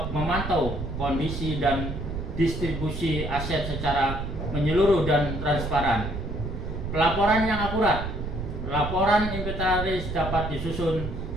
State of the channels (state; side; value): noise; right; rumble, 5 dB below the sound